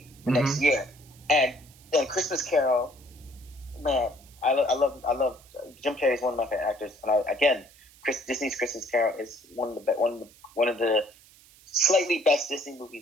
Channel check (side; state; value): right; noise; hiss, 25 dB below the sound